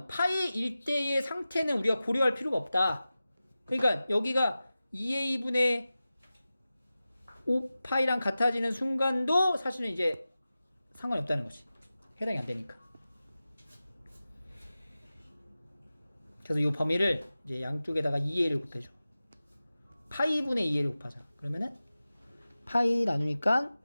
파이 1대의 상태는 우리가 고려할 필요가 없다. 그러니까 여기가 2a분의 5파이랑 같아지는 순간도 사실은 이제 상관이 없다는 거지. 해당이 안 되니까. 그래서 이 범위를 이제 양쪽에다가 2a를 곱해줘. 파이분의 2a를 곱하자. 그러면은 파이 나누니까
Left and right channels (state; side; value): inverted; both; correlation -0.95